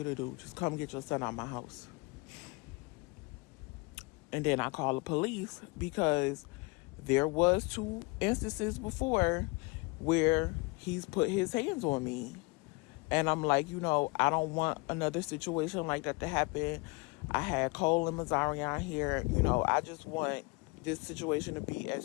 to do. Just come get your son out my house. And then I call the police because there was 2 instances before where he's put his hands on me. And I'm like, I don't want another situation like that to happen. I had Cole and Mazarian here. I just want this situation to be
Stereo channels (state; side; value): quieter; right; 26.9 dB